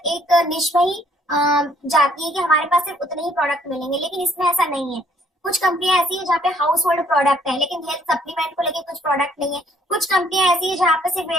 निश में ही जाती है कि हमारे पास सिर्फ उतने ही प्रोडक्ट मिलेंगे, लेकिन इसमें ऐसा नहीं है। कुछ कंपनियां ऐसी है जहाँ पे हाउस होल्ड प्रोडक्ट है लेकिन हेल्थ सप्लीमेंट को लेकर कुछ प्रोडक्ट नहीं है। कुछ कंपनियां ऐसी है जहाँ पे सिर्फ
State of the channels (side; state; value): both; normal; correlation 0.63